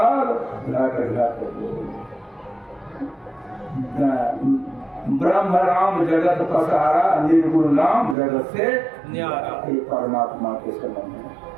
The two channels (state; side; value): drops out; left; at 8.2 s